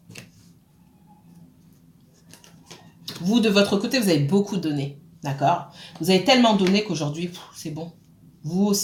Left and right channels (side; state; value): both; identical; correlation 1.00